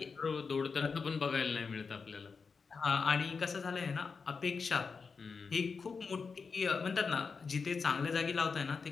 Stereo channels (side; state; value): right; quieter; 5.1 dB